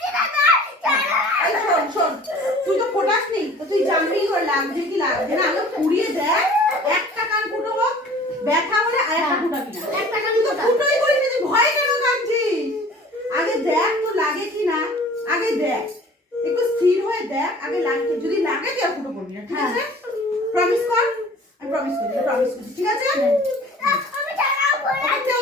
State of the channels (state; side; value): normal; both; correlation 0.47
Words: এই শোন তুই তো ফোটাস নি তো তুই জানবি করে লাগছে কি লাগছে না। আগে পুড়িয়ে দেখ, একটা কান ফুটো হোক, ব্যথা হলে আর একটা ফুটাবি না। একটা কান তুই তো ফুটোই করিস না, তুই ভয় কেন কাঁদছিস? আগে দেখ তো লাগে কি না, আগে দেখ, একটু স্থির হয়ে দেখ। আগে লাগছে, যদি লাগে তুই আর ফুটো করবি না, ঠিক আছে? প্রমিস কর। আমি প্রমিস করছি, ঠিক আছে? কেউ